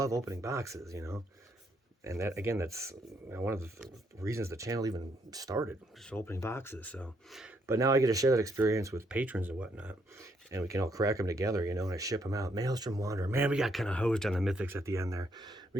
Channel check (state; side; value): normal; both; correlation 0.73